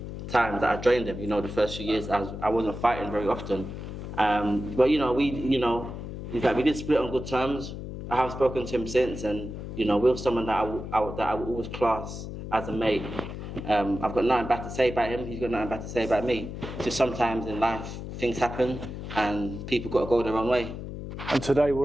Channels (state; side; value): noise; left; hum, 8 dB below the sound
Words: time that I joined him. The first few years I wasn't fighting very often. But we did split on good terms. I have spoken to him since, and Will's someone that I will always class as a mate. I've got nothing bad to say about him. He's got nothing bad to say about me. Just sometimes in life things happen, and people got to go their own way. And today